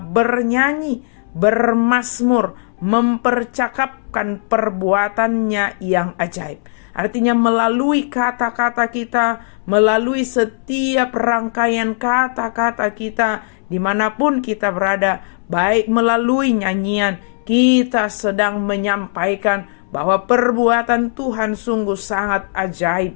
bermazmur, mempercakapkan perbuatannya yang ajaib. Artinya melalui kata-kata kita, melalui setiap rangkaian kata-kata kita, dimanapun kita berada, baik melalui nyanyian, kita sedang menyampaikan bahwa perbuatan Tuhan sungguh sangat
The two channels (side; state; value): right; silent; 68 dB below the other